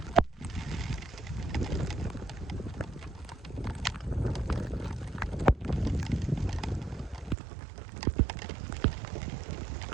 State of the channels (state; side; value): drops out; left; at 7.4 s